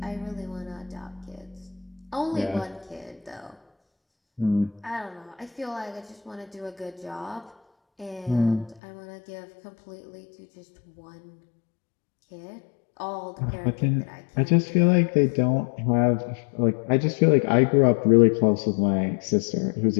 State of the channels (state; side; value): drops out; right; at 8.8 s